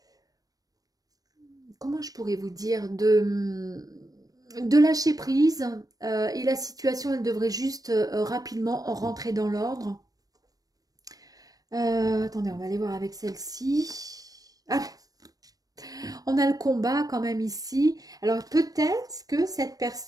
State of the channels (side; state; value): left; late; 0.18 ms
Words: comment je pourrais vous dire, de lâcher prise et la situation, elle devrait juste rapidement rentrer dans l'ordre. Attendez, on va aller voir avec celle-ci. Ah, on a le combat quand même ici. Alors peut-être que cette